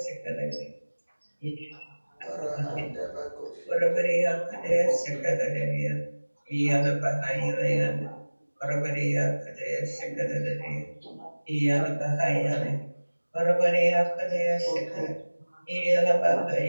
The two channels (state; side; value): inverted; both; correlation -1.00